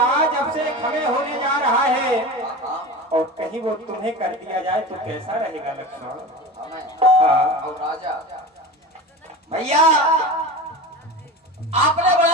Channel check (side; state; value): both; normal; correlation 0.30